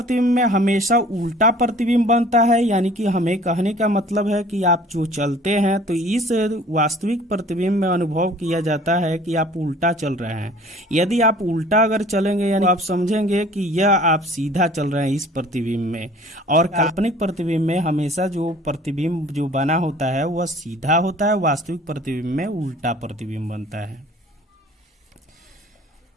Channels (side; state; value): both; normal; correlation 0.50